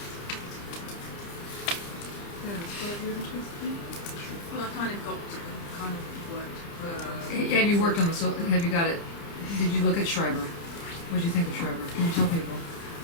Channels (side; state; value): right; late; 30 ms